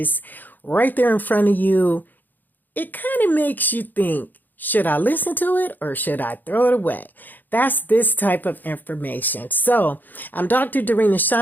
right there in front of you, it kind of makes you think, should I listen to it or should I throw it away? That's this type of information. So I'm Dr. Darina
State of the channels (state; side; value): late; right; 0.087 ms